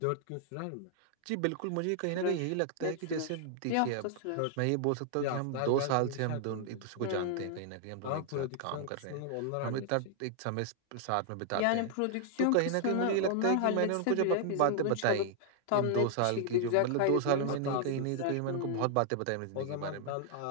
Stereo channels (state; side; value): different; both; correlation 0.00